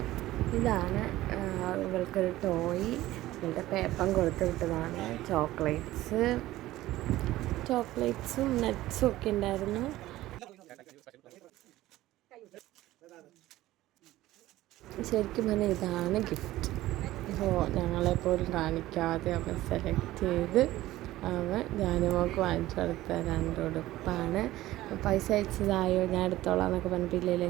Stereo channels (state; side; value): quieter; left; 16.1 dB